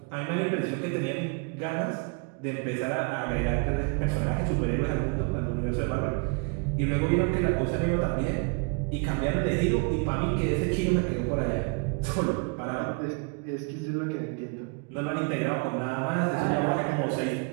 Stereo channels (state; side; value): quieter; left; 35.4 dB